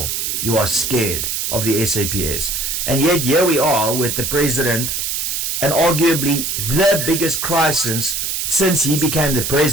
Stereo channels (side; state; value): right; noise; hiss, 1 dB below the sound